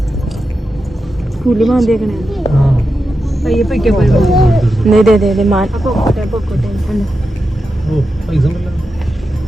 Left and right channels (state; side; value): normal; both; correlation 0.89